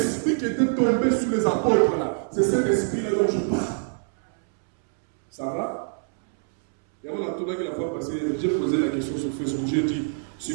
qui était tombé sur les apôtres, là. C'est cet Esprit-là dont je parle. Ça va? Et on a tourné la fois passée, j'ai posé la question sur Facebook. J'ai dit,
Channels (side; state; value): left; silent; 62 dB below the other